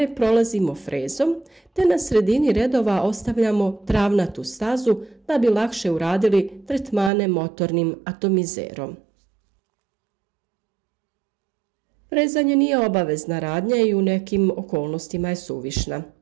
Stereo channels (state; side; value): drops out; left; at 7.1 s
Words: prolazimo frezom, te na sredini redova ostavljamo travnatu stazu da bi lakše uradili tretmane motornim atomizerom. Frezanje nije obavezna radnja i u nekim okolnostima je suvišna.